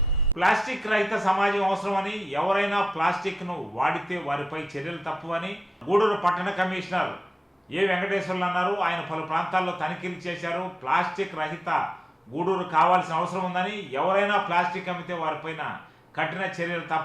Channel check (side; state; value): both; normal; correlation 0.90